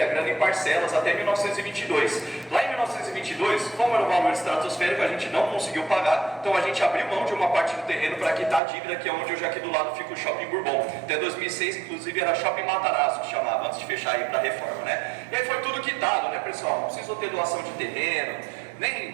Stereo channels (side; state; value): left; drops out; at 8.6 s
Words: a grana em parcelas até 1922. Lá em 1922, como era um valor estratosférico, a gente não conseguiu pagar, então a gente abriu mão de uma parte do terreno para quitar a dívida, que é onde hoje aqui do lado fica o Shopping Bourbon. Até 2006, inclusive, era Shopping Matarazzo, que chamava, antes de fechar aí para a reforma, né? E aí foi tudo quitado, né, pessoal? Não precisou ter doação de terreno, nem